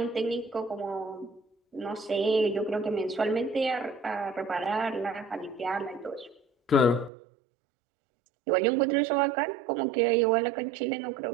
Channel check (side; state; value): left; drops out; at 7.1 s